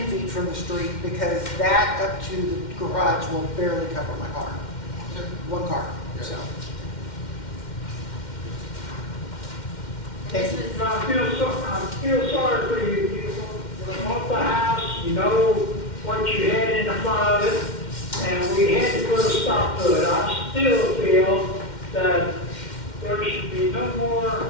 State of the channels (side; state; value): right; late; 2.1 ms